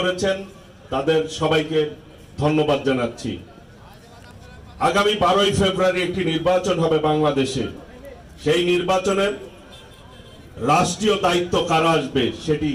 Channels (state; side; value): identical; both; correlation 1.00